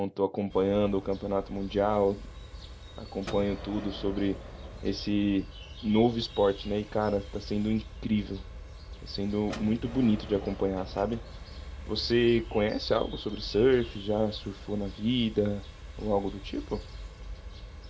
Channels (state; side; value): identical; both; correlation 1.00